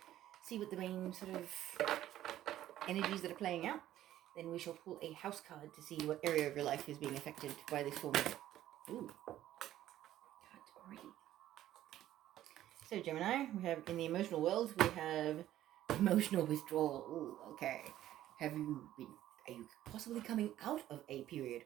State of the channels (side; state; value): left; quieter; 13.1 dB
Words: see what the main sort of energies that are playing out. Then we shall pull a house card to see what area of your life is being affected by this full moon. Ooh, cards already. So Gemini, we have in the emotional world, we have emotional withdrawal. Ooh, okay. Are you possibly coming out of a period